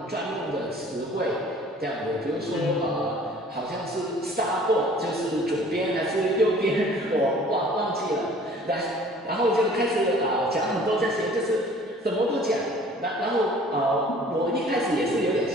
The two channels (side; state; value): both; normal; correlation 0.51